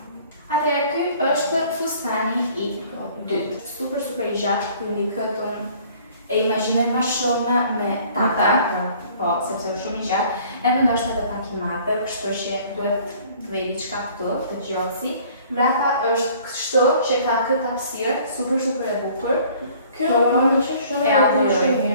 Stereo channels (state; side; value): inverted; both; correlation -0.54